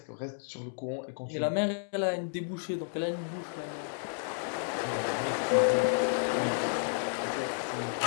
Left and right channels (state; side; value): silent; right; digital silence